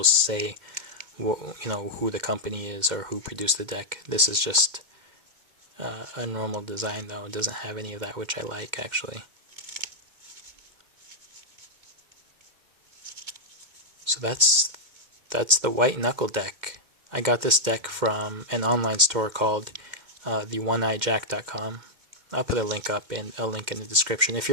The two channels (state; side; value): late; left; 2.1 ms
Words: say, who the company is or who produced the deck. This is just a normal design, though. It doesn't have any of that, which I like, actually. So that's the White Knuckle Deck. I got this deck from an online store called the1eyejack.com. I'll put a link in the description. If